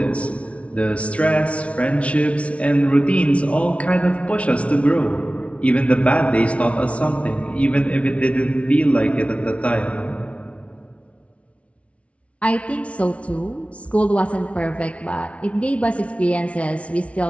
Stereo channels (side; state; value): right; late; 0.063 ms